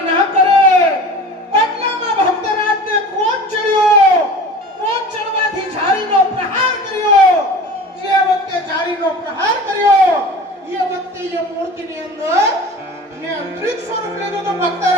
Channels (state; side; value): normal; both; correlation 0.38